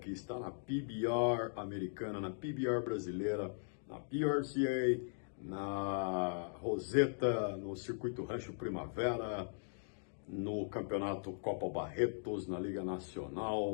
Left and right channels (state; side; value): silent; right; digital silence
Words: está na PBR americana, na PBR brasileira, na PRCA, na Roseta, no Circuito Rancho Primavera, no Campeonato Copa Barretos, na Liga